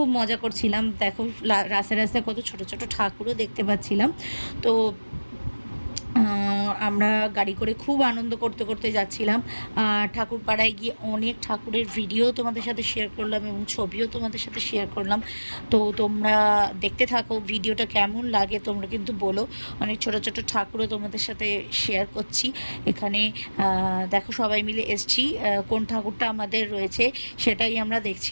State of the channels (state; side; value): inverted; both; correlation -1.00